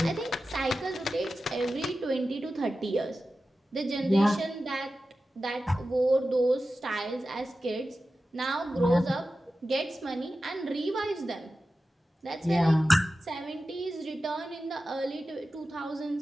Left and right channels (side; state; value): both; normal; correlation 0.93